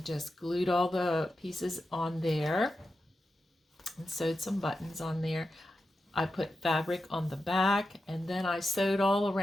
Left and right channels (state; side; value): normal; both; correlation 0.90